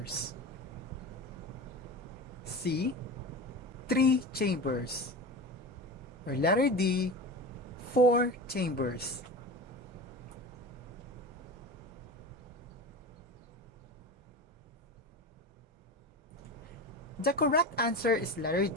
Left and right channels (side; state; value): both; normal; correlation 0.29